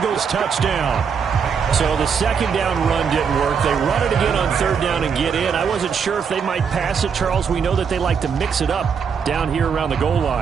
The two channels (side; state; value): left; quieter; 6.5 dB